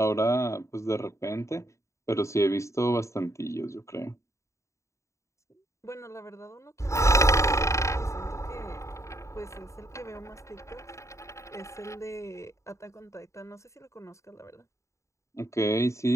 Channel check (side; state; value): right; late; 0.14 ms